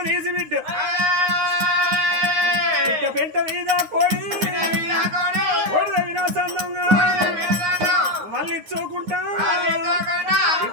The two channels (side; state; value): left; late; 9.6 ms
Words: తీసి బిడ్డ పెంట మీద కోడి వినాశంగా మళ్ళీ చూకుంటా